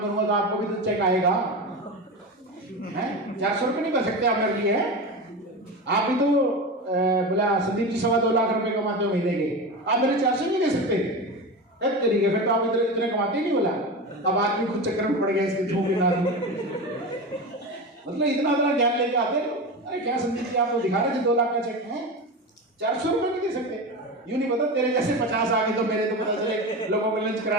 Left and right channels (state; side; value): normal; both; correlation 0.24